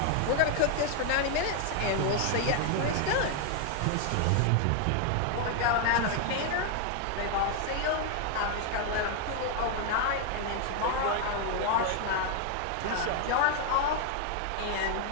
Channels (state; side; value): different; both; correlation 0.00